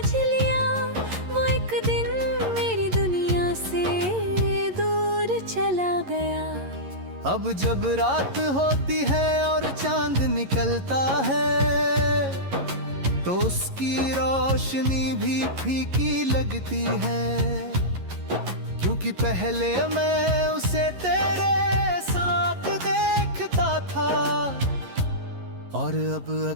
लिया, वो एक दिन मेरी दुनिया से दूर चला गया। अब जब रात होती है और चांद निकलता है तो उसकी रोशनी भी फीकी लगती है, क्योंकि पहले मैं उसे तेरे साथ देखता था और अब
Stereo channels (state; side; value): late; left; 11 ms